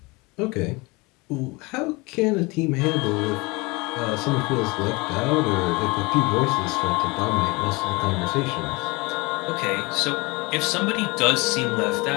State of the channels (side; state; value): right; quieter; 25.3 dB